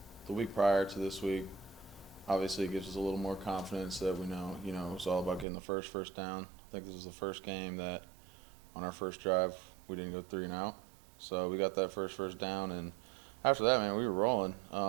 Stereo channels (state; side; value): drops out; left; at 5.5 s